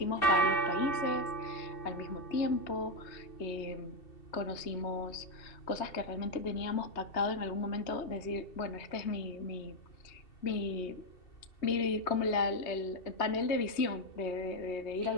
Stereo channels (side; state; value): right; late; 3.2 ms